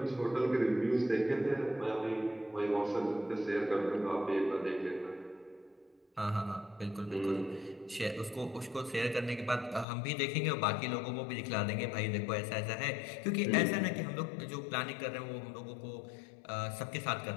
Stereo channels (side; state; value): right; drops out; at 9.9 s